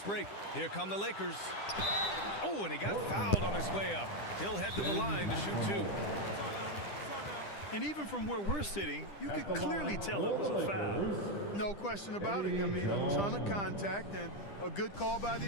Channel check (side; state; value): right; late; 10 ms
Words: break. Here come the Lakers. Oh, and he got fouled on his way up. He'll head to the line to shoot two. And even from where we're sitting, you could clearly tell it was a foul. No question about it. I mean, a ton of contact and a good call by